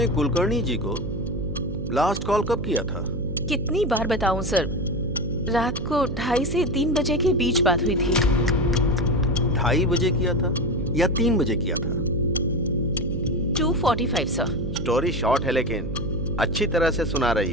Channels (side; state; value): right; noise; hum, 6 dB below the sound